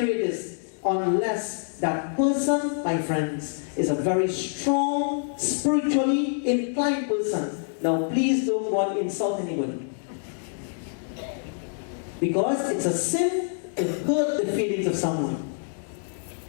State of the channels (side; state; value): right; silent; digital silence